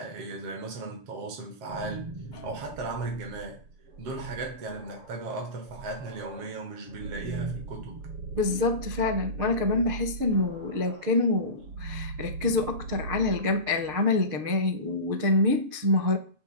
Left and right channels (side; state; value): left; late; 6.7 ms